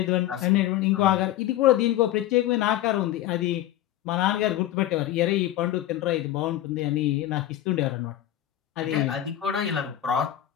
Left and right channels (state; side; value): quieter; right; 13.1 dB